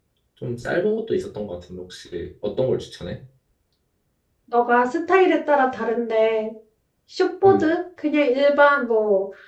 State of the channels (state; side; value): identical; both; correlation 1.00